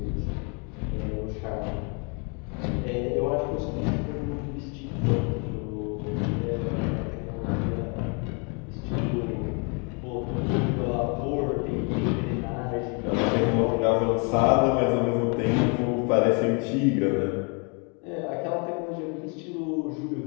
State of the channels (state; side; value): quieter; right; 35.2 dB